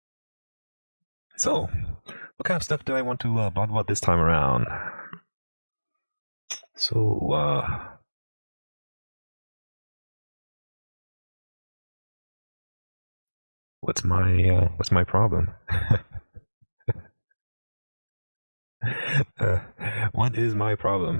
So, what kind of stuff do I want to blog about this time around? So, what's my problem? What is my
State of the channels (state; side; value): inverted; both; correlation -1.00